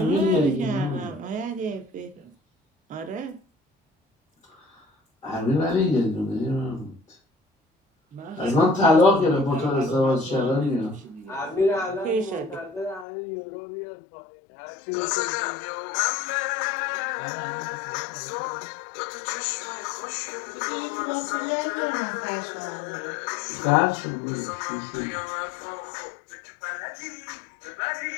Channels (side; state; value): right; drops out; at 13.1 s